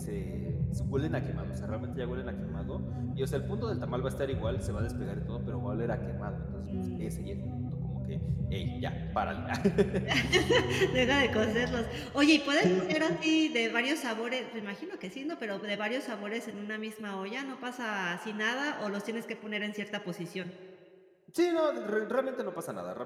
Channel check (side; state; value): both; identical; correlation 1.00